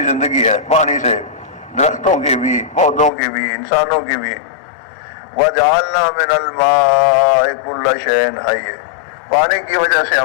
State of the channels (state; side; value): drops out; right; at 3.1 s